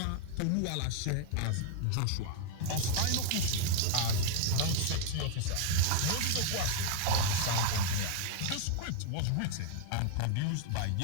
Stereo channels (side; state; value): both; different; correlation 0.00